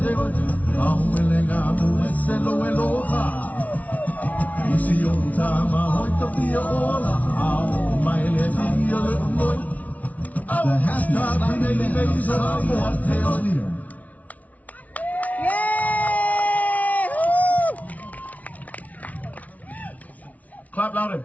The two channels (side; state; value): right; late; 0.071 ms